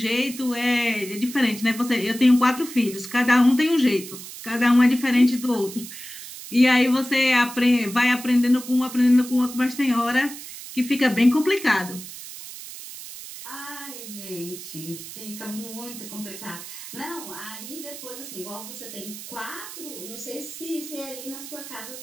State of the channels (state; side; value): noise; right; hiss, 12 dB below the sound